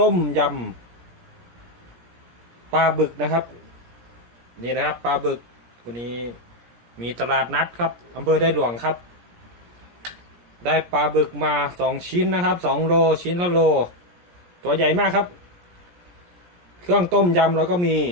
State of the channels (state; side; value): late; left; 17 ms